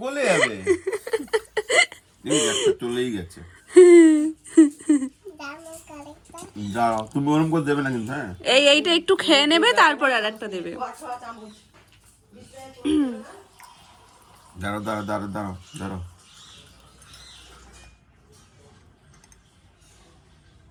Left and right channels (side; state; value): both; identical; correlation 1.00